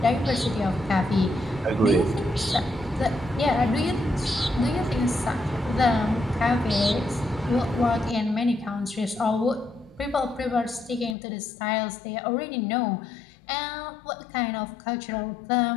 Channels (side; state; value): right; drops out; at 11.2 s